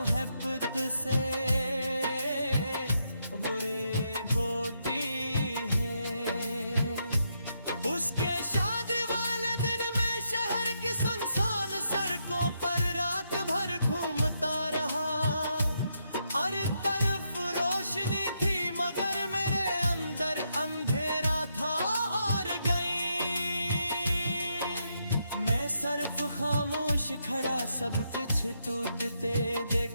से बुरी बोटी है। उसके शादी वाले दिन में शहर की सुनसान सड़कों पर रात भर घूमता रहा। हर तरफ रोशनी थी मगर मेरे अंदर अंधेरा था और गई। मैं सिर्फ खामोश खड़ा सब कुछ टूटते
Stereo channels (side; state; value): both; inverted; correlation -0.80